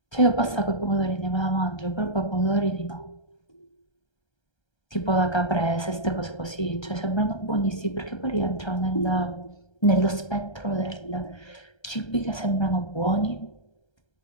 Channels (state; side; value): late; right; 1.3 ms